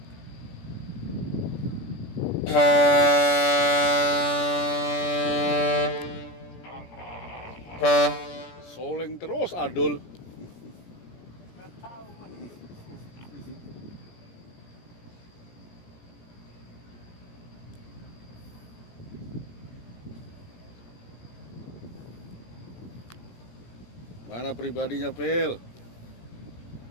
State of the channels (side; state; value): right; late; 17 ms